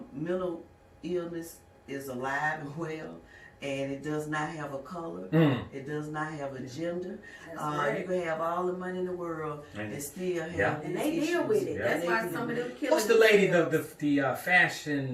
mental illness is alive and well, and it does not have a color. It does not have a gender. That's right. You can have all the money in the world and still have And these they deal issues. with it. Yeah. That's They why deal some of with them it. kill What's the lady, themselves. the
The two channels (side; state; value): both; identical; correlation 1.00